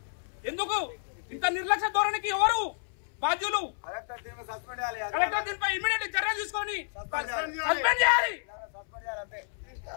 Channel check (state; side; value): silent; right; 58 dB below the other